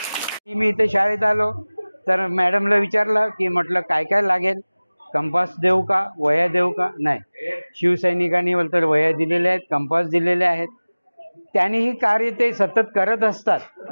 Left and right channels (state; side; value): inverted; both; correlation -1.00